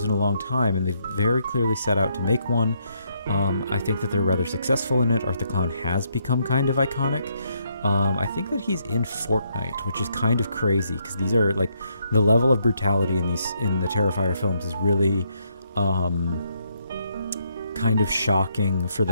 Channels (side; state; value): both; inverted; correlation -0.75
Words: in a long time, and they've very clearly set out to make one. I think that they're rather successful in it. Art the Clown has become kind of iconic. I think that he's in Fortnite, which is kind of crazy, because these are like the level of brutality in the Terrifier films is really kind of shocking for